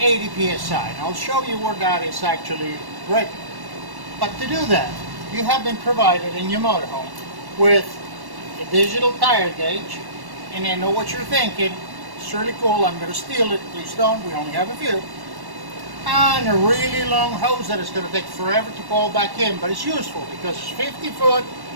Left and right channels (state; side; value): late; left; 1.1 ms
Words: 80 psi. And I'll show you where that is actually written. But to do that, you have been provided in your motorhome with a digital tire gauge, and I know what you're thinking. It's really cool, I'm going to steal it. Please don't, we only have a few. And a really long hose that is going to take forever to pull back in, but it's useful because it's 50 foot